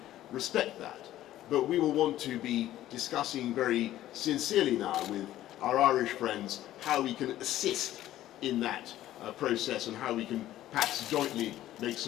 respect that. But we will want to be discussing very sincerely now with our Irish friends how we can assist in that process and how we can perhaps jointly make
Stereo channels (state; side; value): quieter; right; 13.7 dB